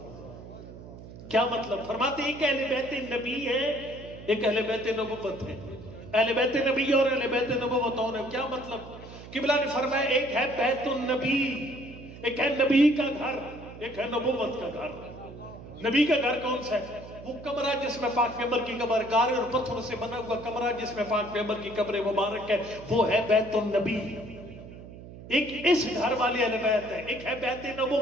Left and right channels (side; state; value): right; noise; hum, 15 dB below the sound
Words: کیا مطلب؟ فرماتے ہیں ایک اہل بیت نبی ہے، ایک اہل بیت نبوت ہے۔ اہل بیت نبی اور اہل بیت نبوت اور ہے۔ کیا مطلب؟ قبلہ نے فرمایا ایک ہے بیت النبی، ایک ہے نبی کا گھر، ایک ہے نبوت کا گھر۔ نبی کا گھر کون سا ہے؟ وہ کمرہ جس میں پاک پیغمبر کی قبر، گارے اور پتھر سے بنا ہوا کمرہ جس میں پاک پیغمبر کی قبر مبارک ہے، وہ ہے بیت النبی۔ ایک اس گھر والی اہل بیت ہے، ایک ہے بیت